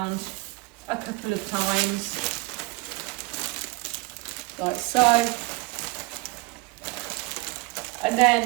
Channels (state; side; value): quieter; left; 24.6 dB